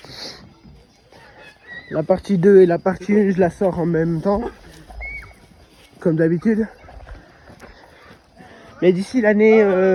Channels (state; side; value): identical; both; correlation 1.00